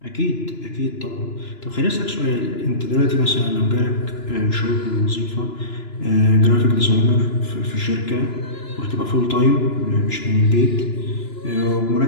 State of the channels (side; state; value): right; late; 2.9 ms